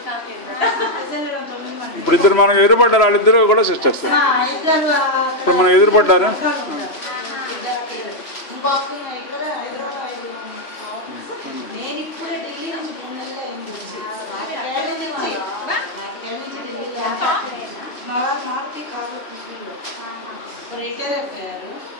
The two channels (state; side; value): late; right; 3.0 ms